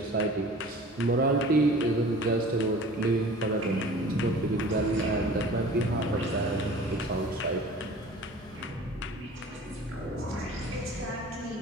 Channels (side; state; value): both; normal; correlation 0.44